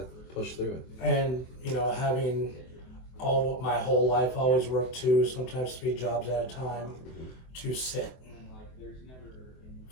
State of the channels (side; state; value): right; late; 24 ms